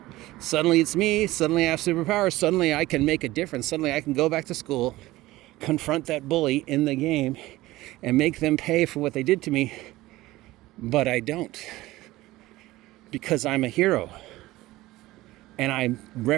suddenly it's me, suddenly I have superpowers, suddenly I can make a difference, suddenly I can go back to school, confront that bully in the game, and make them pay for what they did to me. But I don't. Because I'm a hero. And I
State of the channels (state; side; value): quieter; left; 17.8 dB